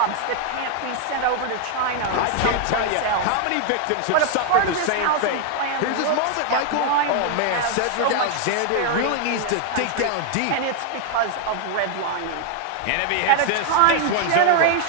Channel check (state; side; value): different; both; correlation 0.00